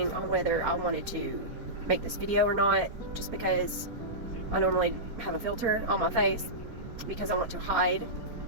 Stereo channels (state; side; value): late; left; 4.4 ms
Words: on whether I wanted to make this video or not, just because I normally have a filter on my face because I want to hide